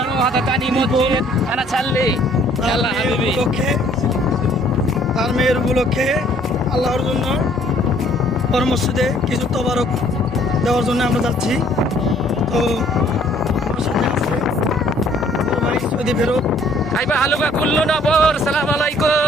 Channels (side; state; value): both; normal; correlation 0.60